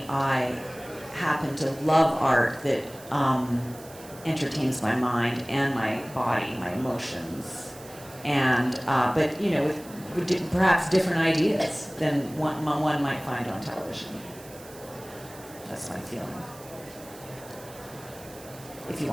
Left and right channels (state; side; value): noise; right; hiss, 19 dB below the sound